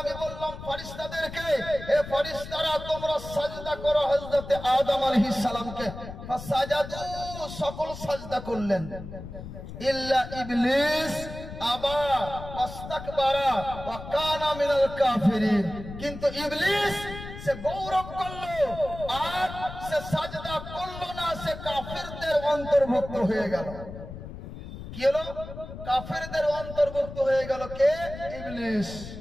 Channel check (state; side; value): noise; left; rumble, 11 dB below the sound